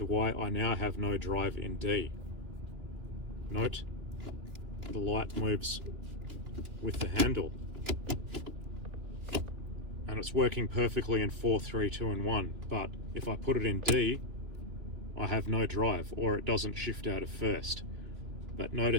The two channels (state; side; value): late; left; 2.9 ms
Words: why I now have no drive in D? Note, the light moves with the handle. And it's working perfectly in 4, 3, 2, and 1. But if I put it in D, I have no drive, or it doesn't shift out of first. But